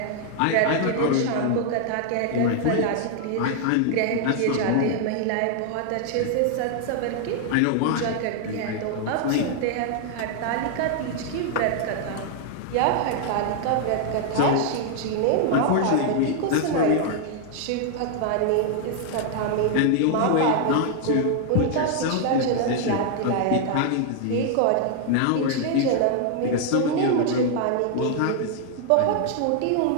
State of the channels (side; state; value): both; different; correlation 0.00